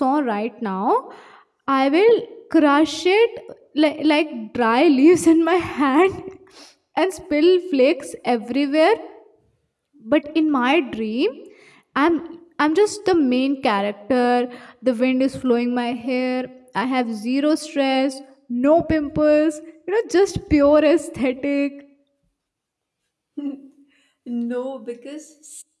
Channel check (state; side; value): identical; both; correlation 1.00